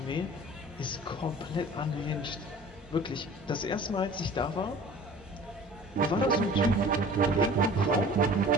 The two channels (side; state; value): both; normal; correlation 0.44